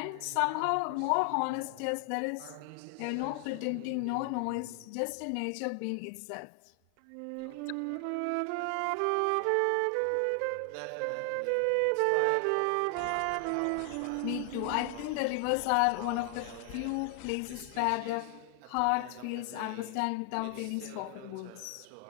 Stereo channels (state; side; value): different; both; correlation 0.00